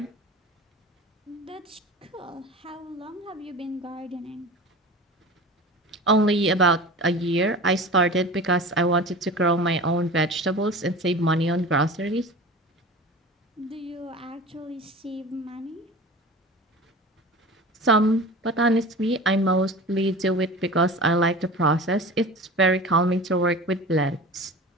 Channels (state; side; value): normal; both; correlation 0.36